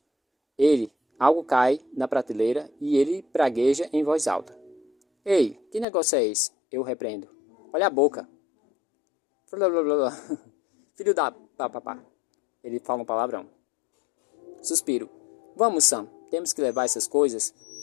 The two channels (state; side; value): drops out; right; at 5.9 s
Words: Algo cai na prateleira e ele pragueja em voz alta. Ei, que negócio é esse? Eu repreendo. Olha a boca. Filho da papapá. Ele fala um palavrão. Suspiro. Vamos, Sam. Temos que levar essas coisas